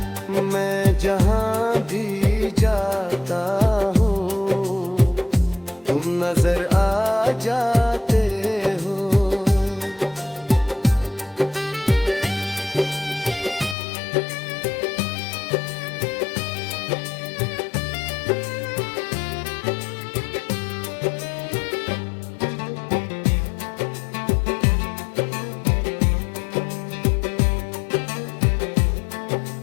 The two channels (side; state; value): right; drops out; at 13.8 s